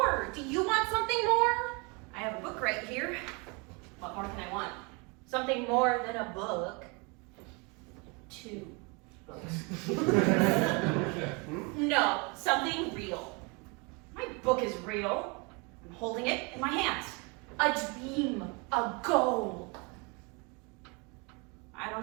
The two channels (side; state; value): left; quieter; 30.6 dB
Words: Do you want something more? I have a book right here. What more can I want? Something more than a book. 2 books. No, something real. My book is real. I'm holding it in my hands. A dream. A goal. I don't